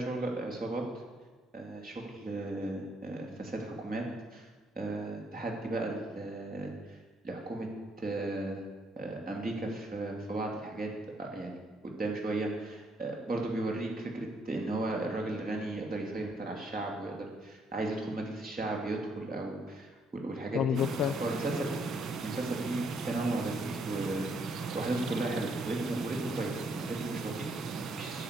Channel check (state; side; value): normal; both; correlation 0.71